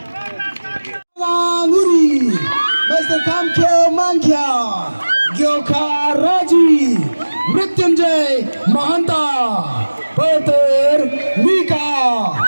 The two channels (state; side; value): inverted; both; correlation -1.00